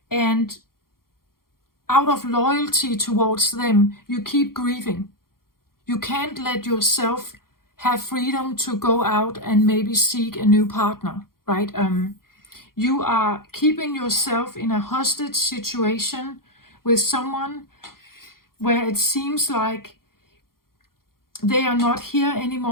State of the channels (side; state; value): right; late; 0.92 ms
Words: and out of loyalty towards them, you keep grieving. You can't let yourself have freedom to go out and maybe seek a new partner, right? You are keeping yourself in a hostage situation with someone where it seems like they are not here